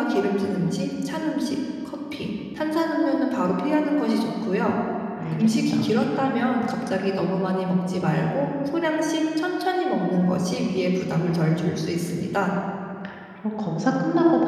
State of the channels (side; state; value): both; identical; correlation 1.00